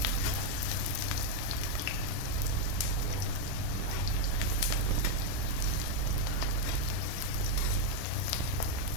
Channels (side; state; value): both; different; correlation 0.01